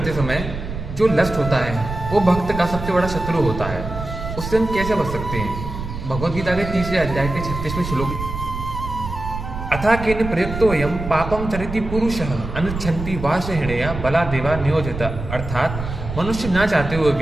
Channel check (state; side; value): noise; right; rumble, 7 dB below the sound